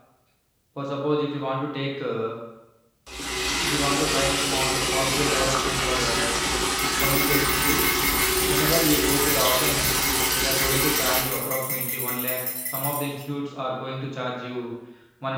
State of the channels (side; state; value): both; identical; correlation 1.00